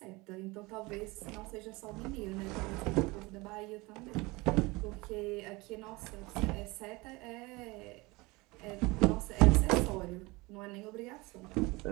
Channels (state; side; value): quieter; left; 23.6 dB